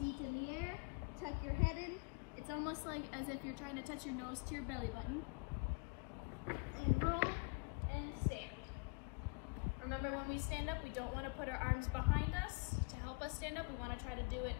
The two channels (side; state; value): right; quieter; 32.6 dB